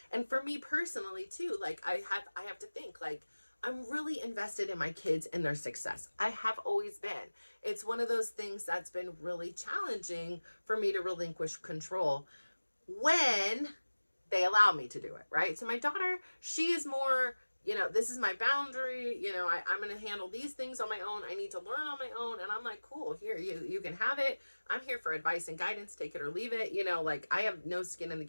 for me personally too, like I have to think, like, I'm really invested in my kids and their success. I have always been. It's one of those things that's been really challenging for me to relinquish control when they allow me to do it, right? So my daughter, she is more, this is my boundary, I'm going to handle these things on my own. I need to learn on my own. And I'm like, cool, here, you can have it. I'm here for advice and guidance, take it or leave it. Like, I have no skin in the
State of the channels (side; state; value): both; inverted; correlation -1.00